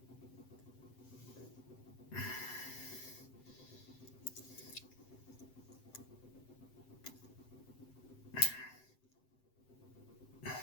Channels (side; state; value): right; late; 7.8 ms